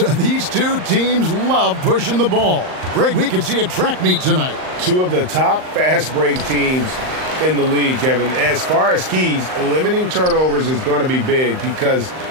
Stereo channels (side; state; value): left; late; 39 ms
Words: These two teams love pushing the ball. Greg, we could see a track meet tonight. Two of the top fast break teams in the league, Kevin. As far as keys, limiting turnovers is going to be big because